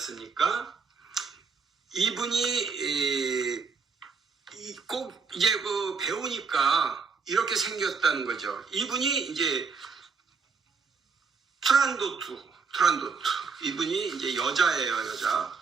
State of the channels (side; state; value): left; quieter; 5.1 dB